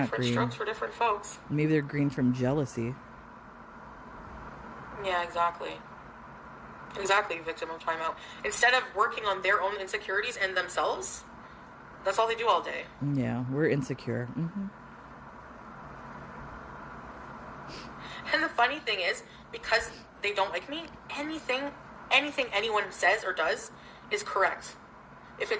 Different green. strokes for different folks. Maybe they're green from jealousy. Yeah, exactly. Exactly, victim of timeout. Instead of working on their own insecurities and themselves, that's all they do all day. Yeah, we're insecure. Mm-hmm. And the funny thing is, because they don't like me, anything anyone says or does is correct. if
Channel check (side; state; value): both; identical; correlation 1.00